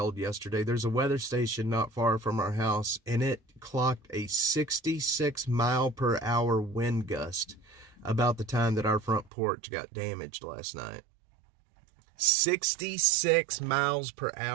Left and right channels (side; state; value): left; drops out; at 9.3 s